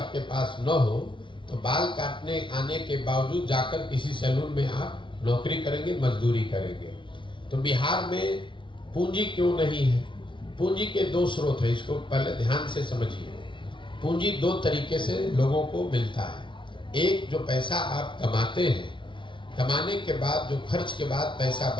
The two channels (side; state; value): right; late; 0.24 ms